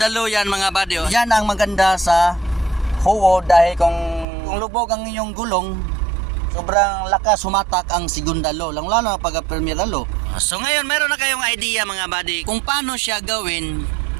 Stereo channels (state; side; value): drops out; left; at 4.2 s